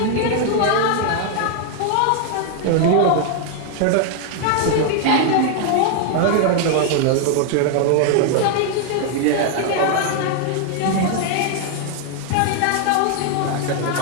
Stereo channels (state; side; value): different; both; correlation 0.00